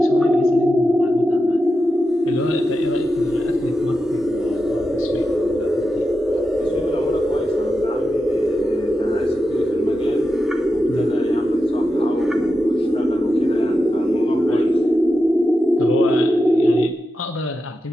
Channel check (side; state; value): both; normal; correlation 0.89